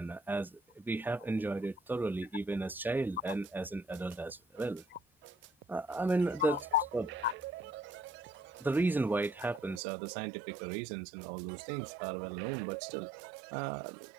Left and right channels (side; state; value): left; drops out; at 9.8 s